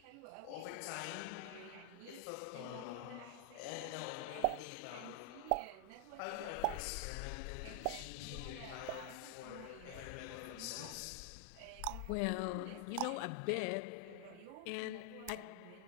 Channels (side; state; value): both; different; correlation 0.00